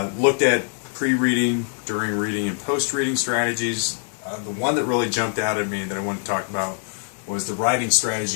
Looked at pre-reading, during reading, and post-reading strategies. The one that really jumped out at me that I want to talk about was the writing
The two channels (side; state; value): right; silent; 59 dB below the other